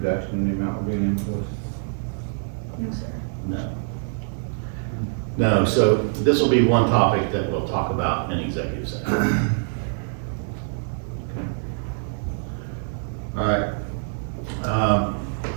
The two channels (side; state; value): left; silent; 62 dB below the other